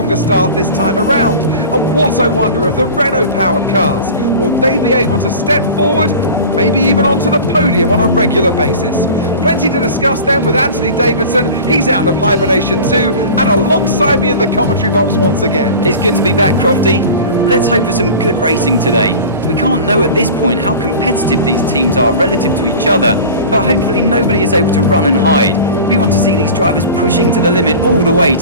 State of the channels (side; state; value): both; inverted; correlation -0.36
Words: start this time around. And what I wonder of the Renault-powered cars. Will they be able to step forward, maybe even onto the podium on a regular basis? Plenty to discuss then with Anthony Davidson. He's out of hibernation too, and alongside me in the commentary box once again. It's good to be back, Crofty. Let's hope for some good racing today. We can't know at this point how competitive these teams are relative to each other, but hopefully nobody is able to run and hide. We want to see these drivers pushing to the limit all the way